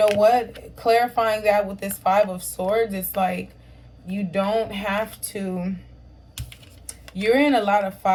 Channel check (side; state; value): both; identical; correlation 1.00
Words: what? Clarifying that with this Five of Swords, it's like you don't have to. You're in a lot of